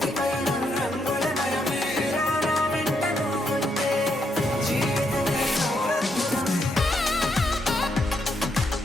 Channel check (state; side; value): normal; both; correlation 0.78